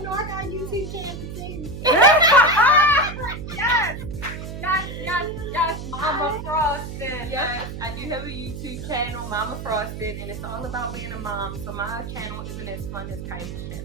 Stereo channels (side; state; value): right; noise; hum, 8 dB below the sound